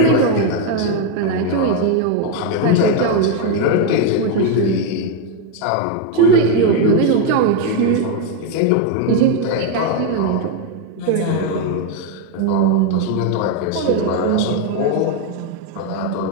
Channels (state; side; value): different; both; correlation 0.01